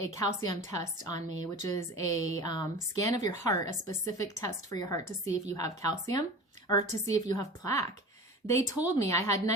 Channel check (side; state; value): both; normal; correlation 0.36